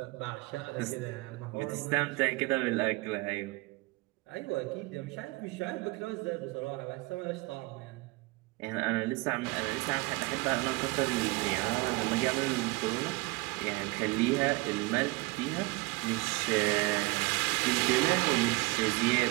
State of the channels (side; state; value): left; quieter; 24.5 dB